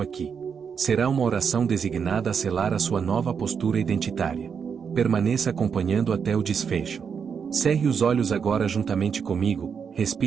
Será uma oração designada a selar a sua nova postura identitária. Permaneça acompanhando até o desfecho. Cerre os olhos agora juntamente comigo,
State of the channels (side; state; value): left; quieter; 6.6 dB